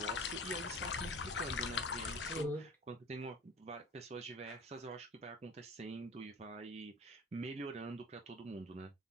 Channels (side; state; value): both; normal; correlation 0.39